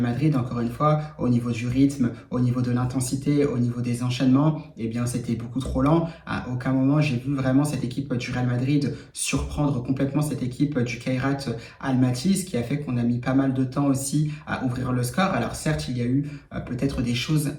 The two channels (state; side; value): identical; both; correlation 1.00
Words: Madrid, encore une fois, au niveau du rythme, au niveau de l'intensité, au niveau des enchaînements, eh bien c'était beaucoup trop lent. À aucun moment j'ai vu vraiment cette équipe du Real Madrid surprendre complètement cette équipe du Kairat Almaty, ce qui a fait qu'on a mis pas mal de temps aussi à ouvrir le score. Alors certes, il y a eu peut-être des choses